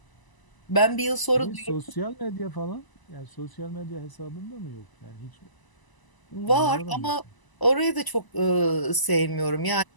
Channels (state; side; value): late; right; 1.0 ms